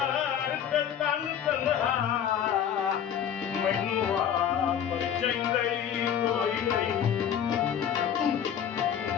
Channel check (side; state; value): right; quieter; 9.0 dB